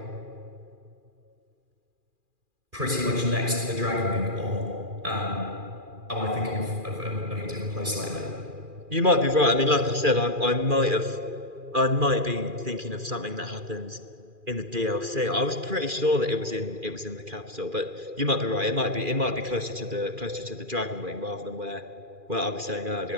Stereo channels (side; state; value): left; late; 2.4 ms